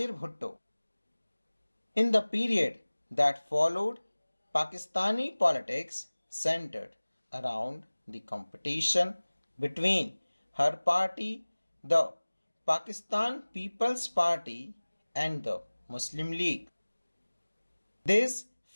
Bhutto. In the period that followed, Pakistani politics centered around the competition between her party, the Pakistan People's Party, and the Muslim League. This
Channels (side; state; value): both; inverted; correlation -1.00